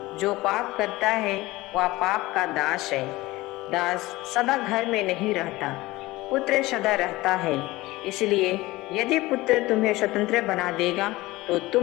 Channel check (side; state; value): right; quieter; 19.5 dB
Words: जो पाप करता है वह पाप का दास है। दास सदा घर में नहीं रहता, पुत्र सदा रहता है। इसलिए यदि पुत्र तुम्हें स्वतंत्र बना देगा तो